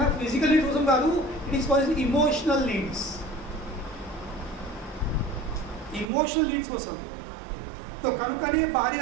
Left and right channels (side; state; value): left; drops out; at 6.1 s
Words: ఫిజికల్ నీడ్స్ కోసం కాదు, it is for emotional needs, emotional needs కోసం. సో కనుకనే